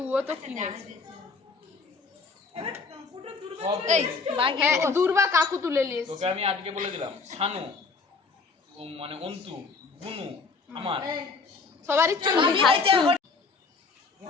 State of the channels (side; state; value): right; quieter; 4.5 dB